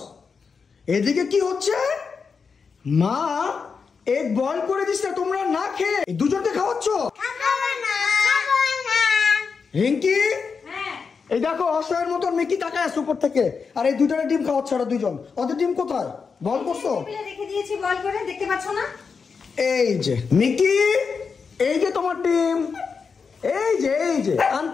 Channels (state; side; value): quieter; right; 5.4 dB